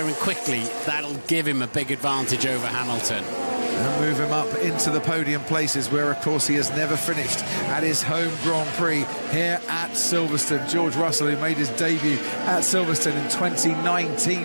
him quickly, that'll give him a big advantage over Hamilton. And move him up into the podium places, where, of course, he has never finished at his home Grand Prix here at Silverstone. George Russell, who made his debut at Silverstone in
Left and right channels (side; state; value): both; inverted; correlation -1.00